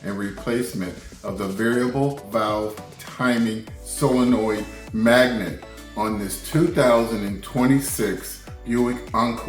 and replacement of the variable valve timing solenoid magnet on this 2026 Buick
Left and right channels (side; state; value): both; identical; correlation 1.00